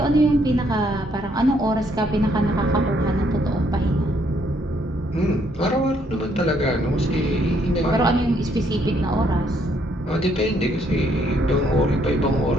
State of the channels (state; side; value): normal; both; correlation 0.70